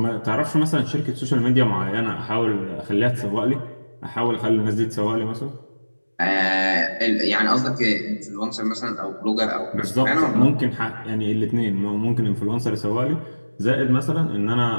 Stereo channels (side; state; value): both; inverted; correlation -1.00